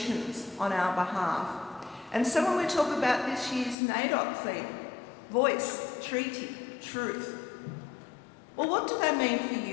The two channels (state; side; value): drops out; right; at 3.8 s